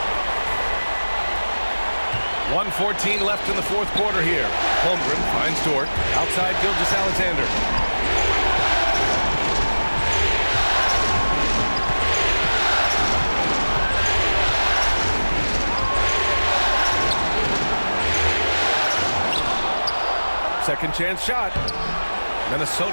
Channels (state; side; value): inverted; both; correlation -1.00